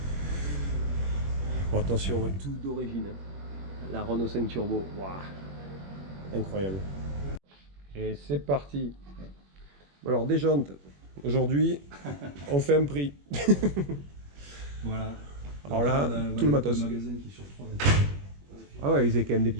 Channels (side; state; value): left; late; 21 ms